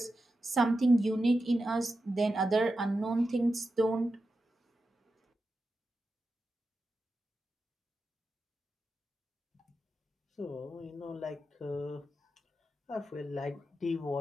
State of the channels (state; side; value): normal; both; correlation 0.90